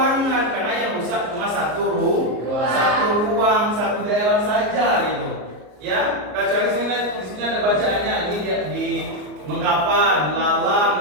karena yang rusak cuma satu ruang, satu daerah saja gitu. Ya, kecuali di sini ada bacaannya ini di Mengkapan,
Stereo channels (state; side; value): late; left; 34 ms